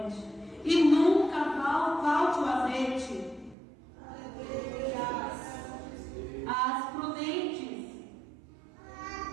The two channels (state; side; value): drops out; left; at 3.6 s